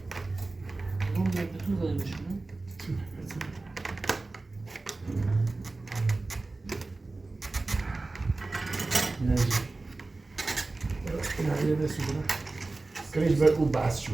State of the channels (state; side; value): quieter; left; 3.3 dB